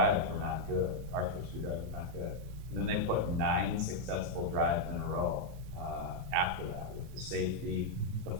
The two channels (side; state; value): left; late; 1.9 ms